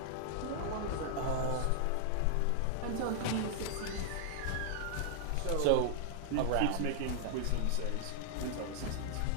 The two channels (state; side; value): different; both; correlation -0.01